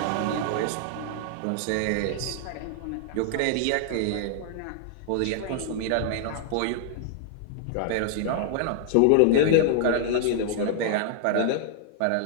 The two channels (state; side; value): different; both; correlation -0.01